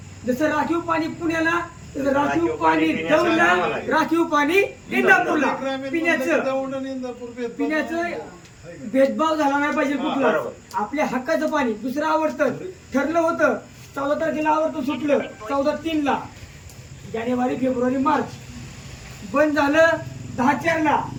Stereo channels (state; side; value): identical; both; correlation 1.00